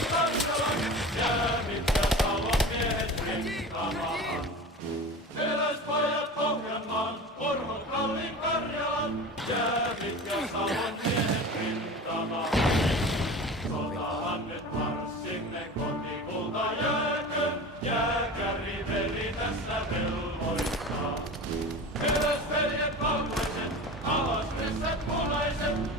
Karjalan, jäävit ja Salon miehet rintamaan. Eräspajat Pohjanmaan, Orvot Kalli Karjalan, jäävit ja Salon miehet rintamaan. Sotahan nyt marssimme kotikulta jääkö, jääkäri veli tässä velvoittaa. Eräsveljet valkoiset, alas ryssät punaiset,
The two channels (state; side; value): normal; both; correlation 0.33